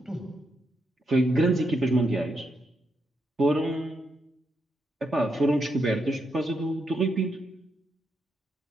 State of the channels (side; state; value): both; normal; correlation 0.81